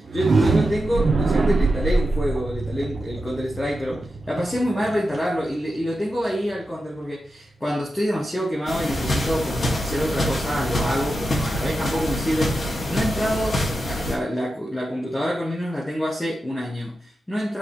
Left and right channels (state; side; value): normal; both; correlation 0.90